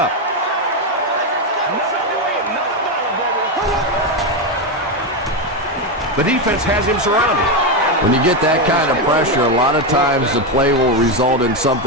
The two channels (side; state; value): both; normal; correlation 0.09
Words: The defense has him surrounded. When you get that kind of pressure, a lot of times the play will result in